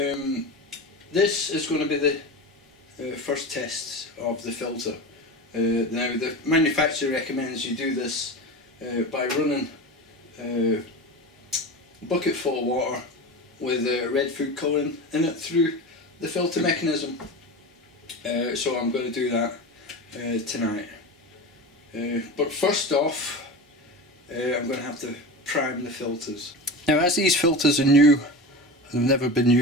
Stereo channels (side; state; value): both; normal; correlation 0.27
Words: is going to be the first test of the filter. Now the manufacturer recommends you do this by running a bucket full of water with red food colouring in it through the filter mechanism. So I'm going to do that tonight. But first off, I'm going to have to prime the filters. Now, as these filters are new and have never been